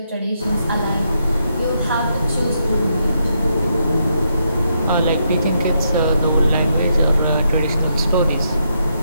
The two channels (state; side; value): inverted; both; correlation -0.79